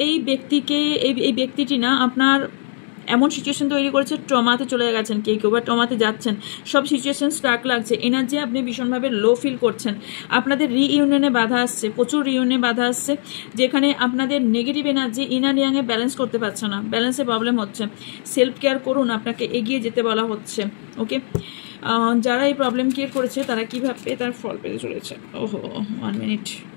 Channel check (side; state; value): right; silent; 57 dB below the other